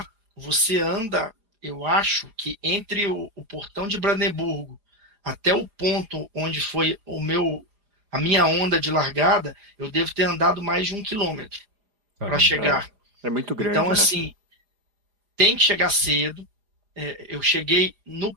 você anda, eu acho que entre o portão de Brandemburgo até o ponto onde foi a minha onda de largada, eu devo ter andado mais de 1 quilômetro para chegar. É muito grande, Então, né? assim, tem que chegar cedo. Eu cheguei no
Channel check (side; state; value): left; late; 4.9 ms